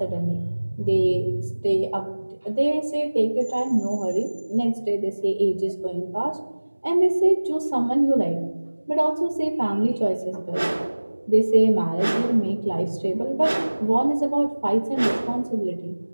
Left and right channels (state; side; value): inverted; both; correlation -1.00